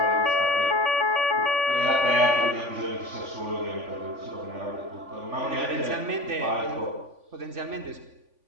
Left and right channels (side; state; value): left; late; 3.5 ms